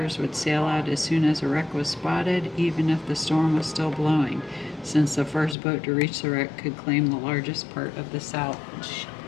would sail out as soon as a wreck was spotted, even if the storm was still blowing, since the first boat to reach the wreck could claim the largest part of the salvage.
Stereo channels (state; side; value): drops out; right; at 5.6 s